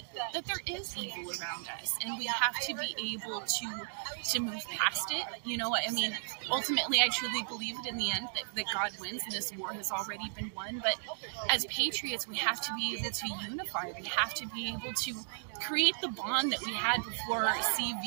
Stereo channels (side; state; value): left; silent; digital silence